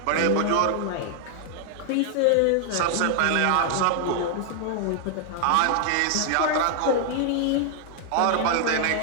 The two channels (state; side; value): different; both; correlation 0.00